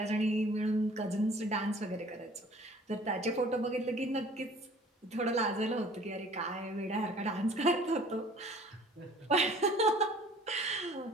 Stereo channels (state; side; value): normal; both; correlation 0.51